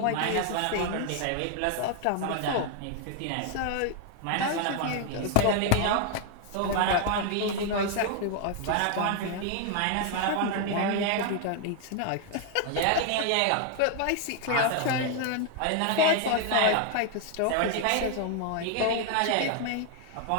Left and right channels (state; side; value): different; both; correlation 0.00